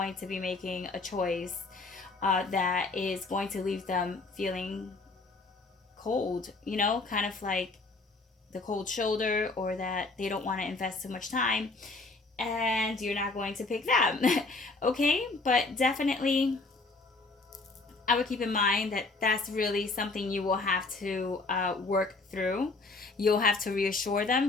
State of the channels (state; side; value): quieter; right; 3.5 dB